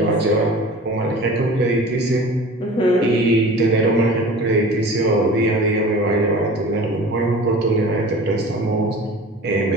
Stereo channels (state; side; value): normal; both; correlation 0.40